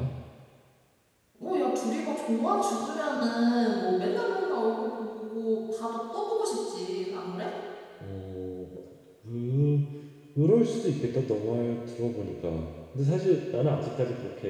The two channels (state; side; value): identical; both; correlation 1.00